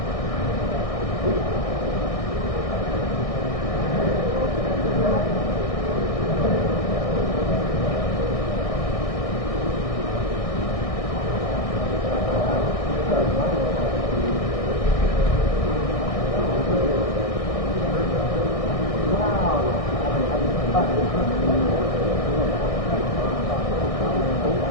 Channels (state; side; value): late; right; 1.6 ms